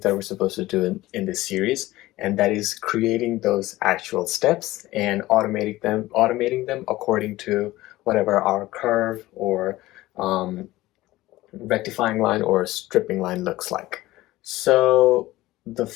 that we're supposed to do in this series, and that is creating those actual steps and automating them according to whatever our curve or um, rectifying line or stripping line looks like. So the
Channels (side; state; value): right; quieter; 17.5 dB